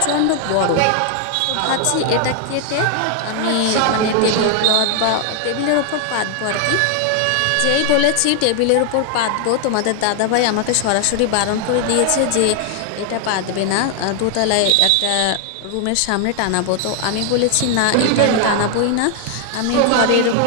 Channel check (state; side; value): different; both; correlation 0.00